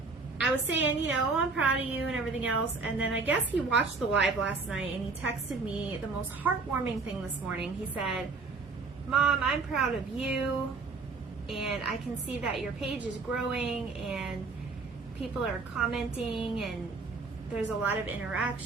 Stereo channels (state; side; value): quieter; left; 4.1 dB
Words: I was saying, you know, I'm proud of you and everything else, and then I guess he watched the live last night, and he texted me the most heartwarming thing this morning. He said, Mom, I'm proud of you, and I can see that your page is growing, and people are commenting, and there's a lot of